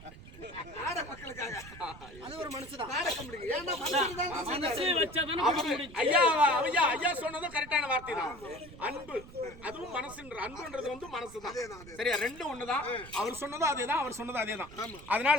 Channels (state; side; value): noise; right; rumble, 17 dB below the sound